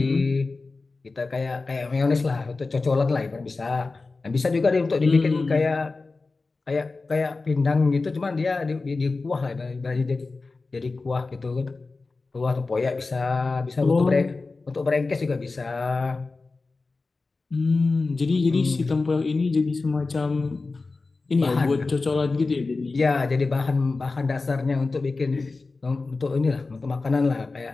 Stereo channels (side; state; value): right; quieter; 3.8 dB